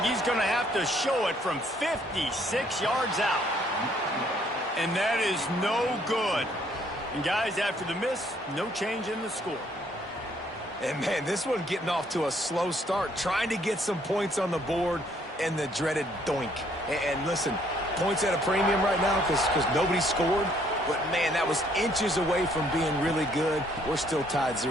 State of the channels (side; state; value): both; normal; correlation 0.66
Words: He's going to have to show it from 56 yards out. And that is no good. And guys, after the miss, no change in the score. And man, this one getting off to a slow start, trying to get some points on the board, and the dreaded doink. And listen, points at a premium right now because nobody scored. But, man, that was inches away from being really good. We're still tied